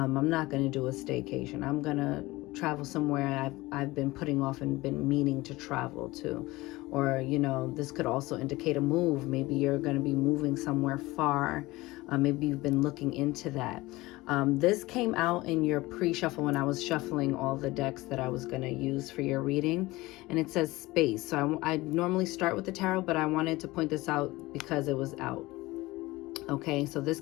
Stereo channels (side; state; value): right; quieter; 20.1 dB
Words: not gonna do a staycation. I'm gonna travel somewhere I've been putting off and been meaning to travel to. Or, you know, this could also indicate a move. Maybe you're going to be moving somewhere far. Maybe you've been looking into that. This came out in your pre-shuffle when I was shuffling all the decks that I was going to use for your reading, and it says space. So I normally start with the tarot, but I wanted to point this out because it was out. Okay, so this